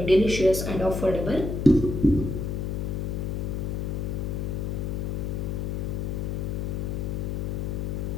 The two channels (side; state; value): left; noise; hum, 1 dB below the sound